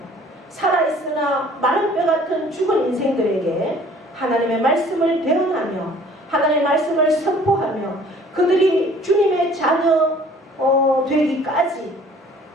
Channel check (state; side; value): normal; both; correlation 0.53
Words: 살아있으나 마른 뼈 같은 죽은 인생들에게 하나님의 말씀을 대언하며 하나님의 말씀을 선포하며 그들이 주님의 자녀 되기까지